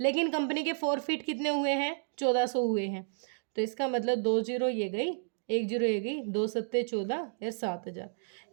लेकिन कंपनी के 4 फीट कितने हुए हैं 1400 हुए हैं। तो इसका मतलब 2 0 ये गई, 1 0 ये गई, 2 7 14 या 7000।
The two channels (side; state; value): left; silent; digital silence